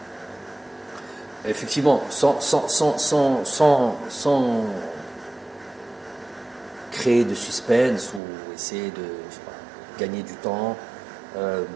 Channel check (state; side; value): drops out; left; at 8.2 s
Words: effectivement, sans créer de suspense ou essayer de gagner du temps,